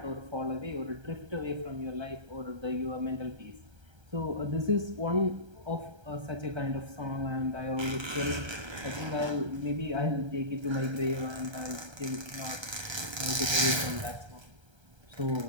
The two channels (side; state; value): left; late; 1.3 ms